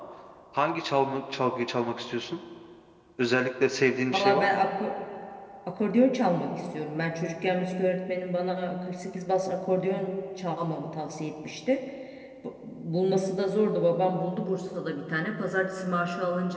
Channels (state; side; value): identical; both; correlation 1.00